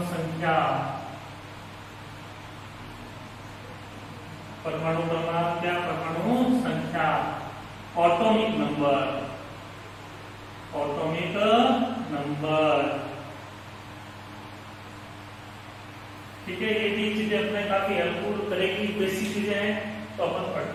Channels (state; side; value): identical; both; correlation 1.00